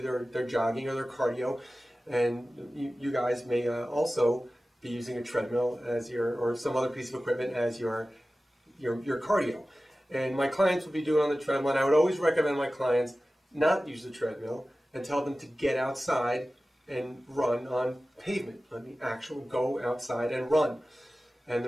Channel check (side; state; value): both; normal; correlation 0.96